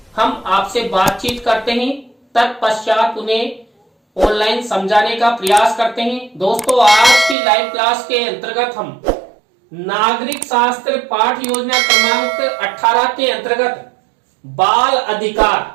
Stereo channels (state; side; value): drops out; left; at 7.4 s